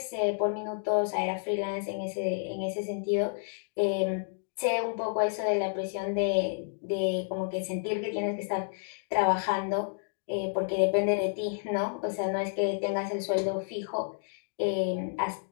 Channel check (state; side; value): silent; right; digital silence